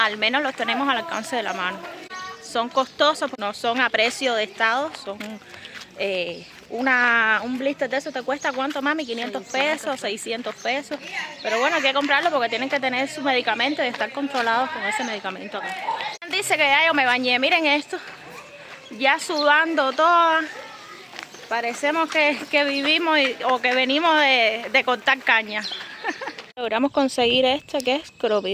menos los tenemos al alcance de la mano. Son costosos, no son a precio de estado, son un blister de eso te cuesta ¿cuánto, mami? 500 pesos, 600 pesos, pero bueno, hay que comprarlo porque tienen que tener su medicamento y estar controlados con ese medicamento acá. Dice que ya yo me bañé, miren esto, ya sudando toda, parecemos que vivimos o que venimos de cortar caña. Logramos conseguir este que es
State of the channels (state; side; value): identical; both; correlation 1.00